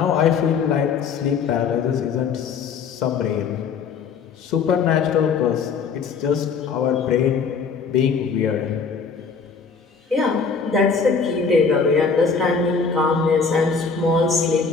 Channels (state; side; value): quieter; right; 5.5 dB